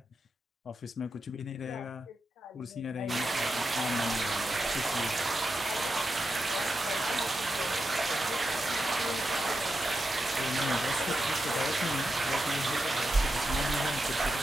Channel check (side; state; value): both; normal; correlation 0.88